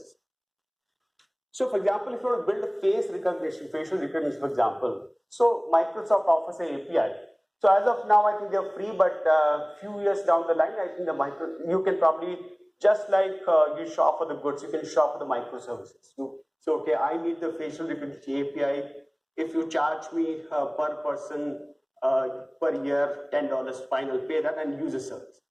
So, for example, if you want to build a facial recognition, for example, so Microsoft offers an API. So as of now, I think they're free, but few years down the line, I think you can probably, just like you shop for the goods, you can shop for the microservices. So okay, I need the facial recognition API. If you charge me per person per year $10, fine, I'll pay that and use the service.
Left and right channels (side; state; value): both; identical; correlation 1.00